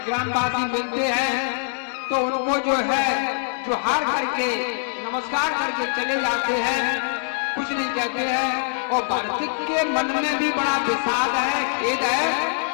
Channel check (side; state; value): right; silent; digital silence